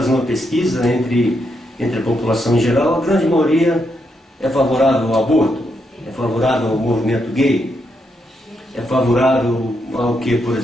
uma pesquisa entre a população em geral, a grande maioria é favorável ao aborto, é favorável ao movimento gay, é favorável ao que, por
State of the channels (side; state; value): both; normal; correlation 0.80